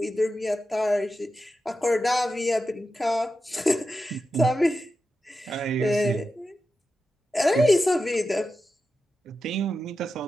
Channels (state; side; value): normal; both; correlation 0.91